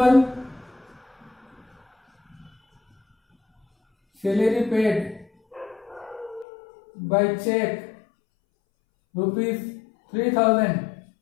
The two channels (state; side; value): drops out; right; at 6.5 s